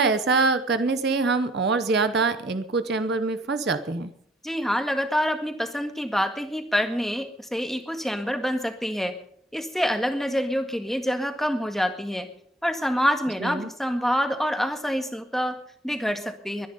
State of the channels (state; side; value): normal; both; correlation 0.64